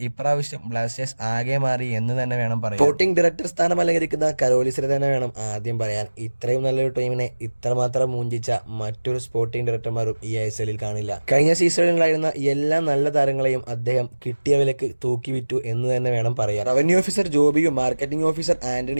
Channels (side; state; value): both; inverted; correlation -1.00